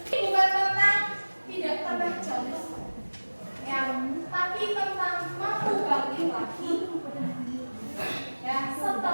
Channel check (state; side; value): inverted; both; correlation -1.00